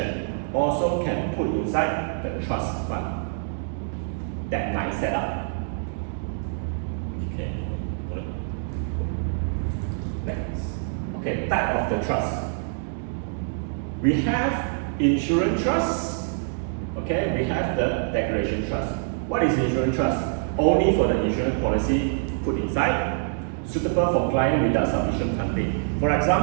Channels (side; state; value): left; silent; digital silence